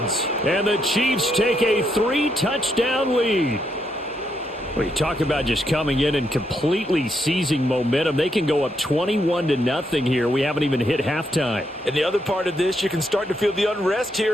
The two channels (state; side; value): normal; both; correlation 0.78